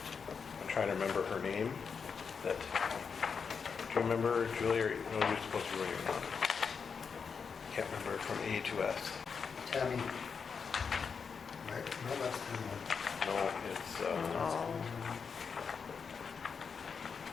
trying to remember her name. Do you remember, Julie, or no, you're supposed to be writing on it. Can't remember, from A2S. Tammy. Right? No, that's the one. No, it's,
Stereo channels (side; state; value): right; quieter; 5.9 dB